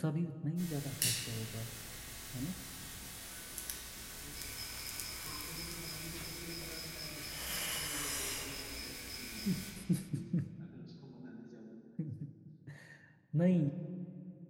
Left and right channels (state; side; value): identical; both; correlation 1.00